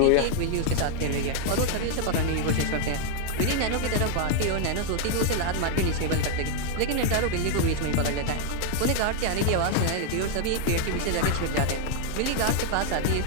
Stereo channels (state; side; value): different; both; correlation 0.00